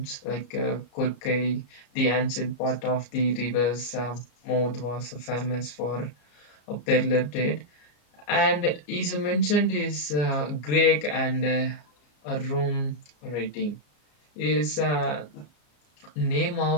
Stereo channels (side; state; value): right; late; 34 ms